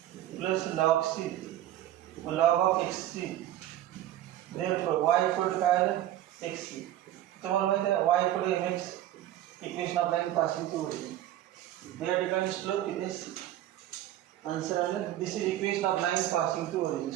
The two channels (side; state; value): left; quieter; 13.0 dB